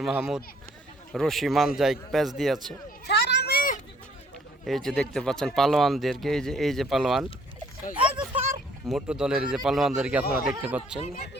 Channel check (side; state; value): both; normal; correlation 0.61